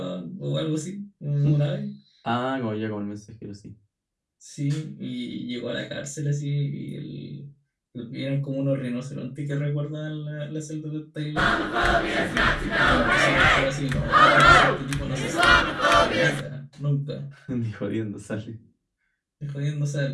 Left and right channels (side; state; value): both; identical; correlation 1.00